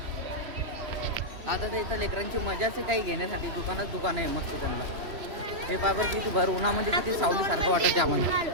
आता तर इथं लेकरांची मजाच आहे काही घेण्यासाठी. दुकान आहे मस्त त्यांना. हे पायबर किती भर उन्हामध्ये किती सावली सारखं वाटत आम्हाला.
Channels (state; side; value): late; left; 3.1 ms